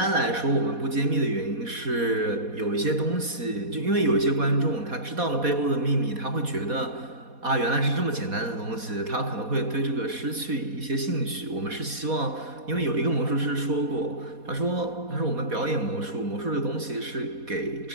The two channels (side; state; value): left; late; 4.2 ms